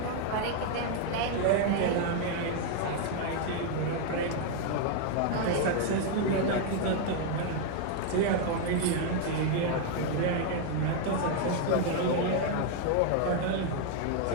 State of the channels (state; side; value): different; both; correlation 0.00